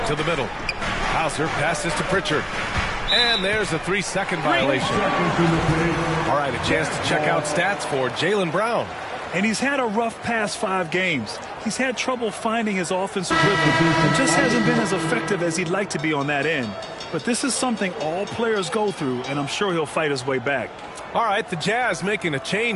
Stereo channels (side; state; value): both; identical; correlation 1.00